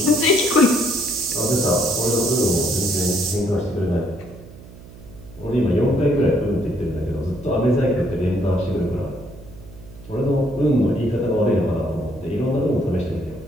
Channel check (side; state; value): right; noise; hum, 19 dB below the sound